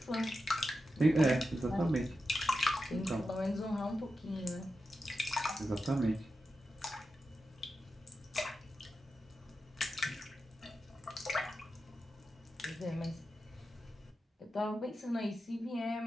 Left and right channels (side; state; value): both; normal; correlation 0.90